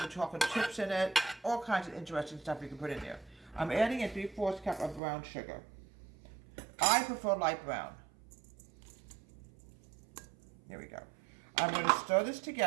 chocolate chips in it, all kinds of interesting stuff you can put in there. I'm adding a 3/4 cup of brown sugar. I prefer light brown. Here we go. I'm going to stir this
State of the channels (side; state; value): left; drops out; at 5.0 s